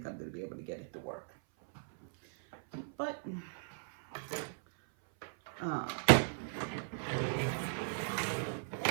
I'm going to be able to get it to work. But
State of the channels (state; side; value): silent; left; 53 dB below the other